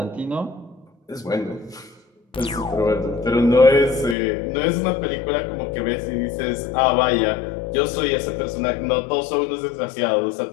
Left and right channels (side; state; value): right; drops out; at 4.2 s